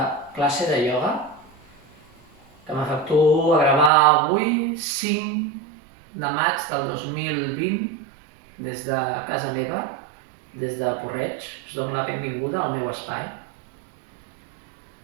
classe de ioga que m'efectuo a gravar avui, 5 de maig del 2020, des de casa meva, des de Porreig. Us dono la benvinguda al meu espai.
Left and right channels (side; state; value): left; drops out; at 3.9 s